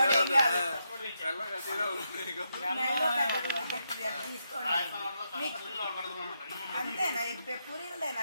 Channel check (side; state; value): both; inverted; correlation -0.82